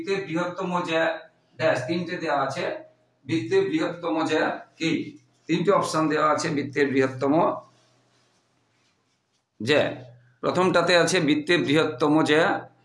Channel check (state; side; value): identical; both; correlation 1.00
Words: বৃহত্তম জ্যা ড্যাশ, তিনটে দেওয়া আছে। বৃত্তের বৃহত্তম জ্যা কি? তিনটে অপশন দেওয়া আছে বৃত্তের বৃহত্তম জ্যা। প্রথমটাতে আছে বৃত্তের বৃহত্তম জ্যা